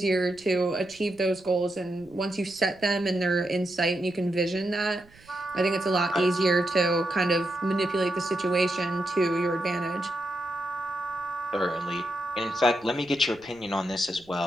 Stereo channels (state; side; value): noise; right; rumble, 27 dB below the sound